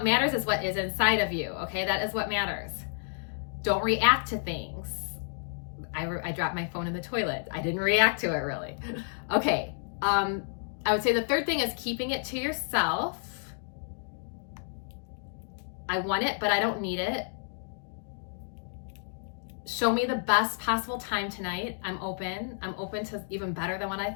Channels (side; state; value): right; silent; digital silence